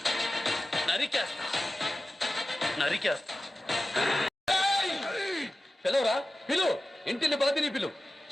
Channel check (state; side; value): normal; both; correlation 0.95